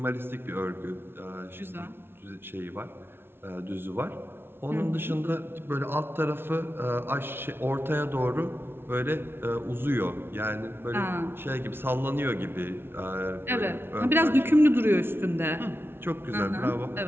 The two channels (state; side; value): late; left; 0.11 ms